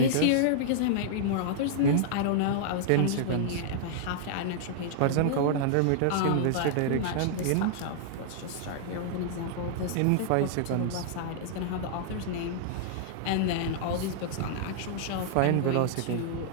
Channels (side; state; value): both; different; correlation -0.01